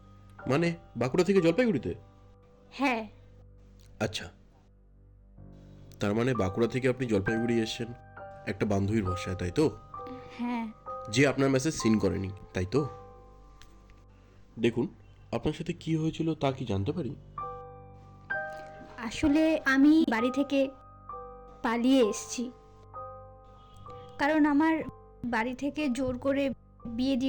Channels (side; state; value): both; identical; correlation 1.00